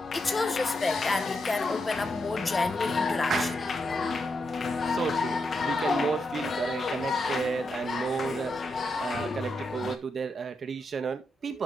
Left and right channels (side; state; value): both; normal; correlation 0.84